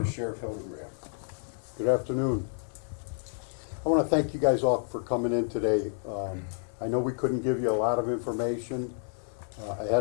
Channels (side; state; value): right; silent; 58 dB below the other